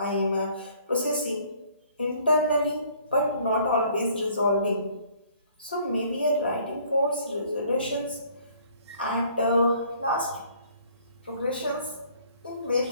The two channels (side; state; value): both; inverted; correlation -0.58